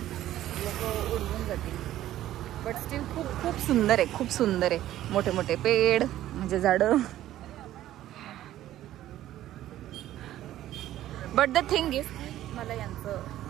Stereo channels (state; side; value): quieter; left; 13.4 dB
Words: उडवून जातील. बट स्टील खूप खूप सुंदर आहे, खूप सुंदर आहे. मोठे मोठे पेड म्हणजे झाडं. बट द थिंग इज मला यांचं